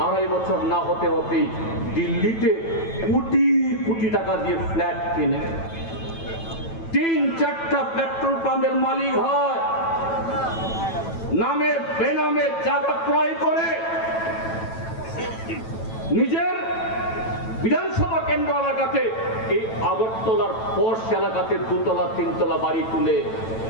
2.5 বছর না হতে হতেই দিল্লিতে কোটি কোটি টাকা দিয়ে ফ্ল্যাট কিনে 3-4টা পেট্রোল পাম্পের মালিক হয়, নামে বেনামে জায়গা ক্রয় করে নিজের বিধানসভা কেন্দ্র এলাকাতে এই আগরতলার পশ এলাকাতে 2তলা 3তলা বাড়ি তুলে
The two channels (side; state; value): right; late; 9.1 ms